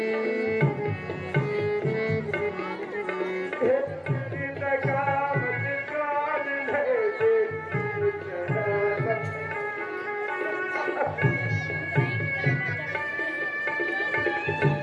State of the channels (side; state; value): both; identical; correlation 1.00